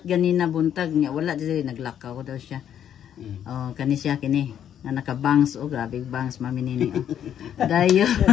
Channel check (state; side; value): quieter; right; 9.7 dB